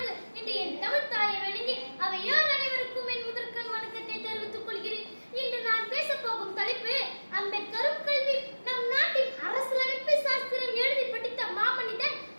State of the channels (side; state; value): both; inverted; correlation -1.00